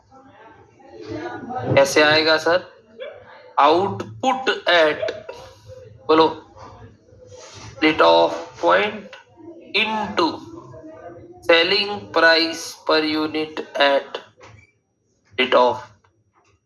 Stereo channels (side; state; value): both; identical; correlation 1.00